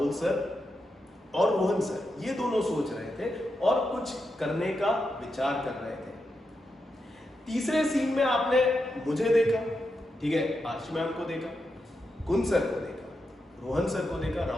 सर और रोहन सर, ये दोनों सोच रहे थे और कुछ करने का विचार कर रहे थे। तीसरे सीन में आपने मुझे देखा, ठीक है, आर्ची मैम को देखा, कुन सर को देखा, रोहन सर को देखा,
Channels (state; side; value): normal; both; correlation 0.86